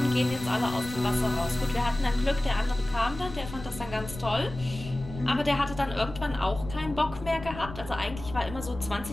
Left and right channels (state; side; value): noise; left; rumble, 12 dB below the sound